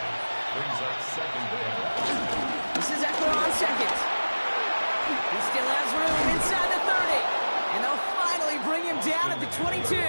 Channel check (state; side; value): inverted; both; correlation -1.00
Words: Brings up 2nd down. This is Eckler on 2nd. He still has room inside the 30. And they'll finally bring him down at the 22.